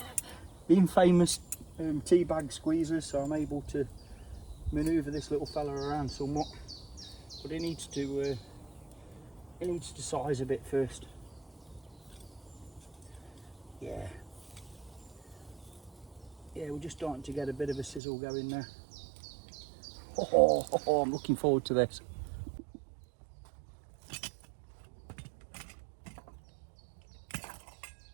the infamous tea bag squeezers, so I'm able to manoeuvre this little fella around somewhat. But it needs to size a bit first. Yeah, we're just starting to get a bit of a sizzle going there. Oh, I'm looking forward to this.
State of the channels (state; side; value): drops out; left; at 18.0 s